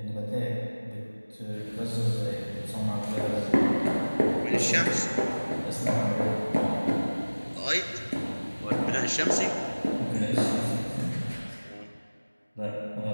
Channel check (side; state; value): both; inverted; correlation -1.00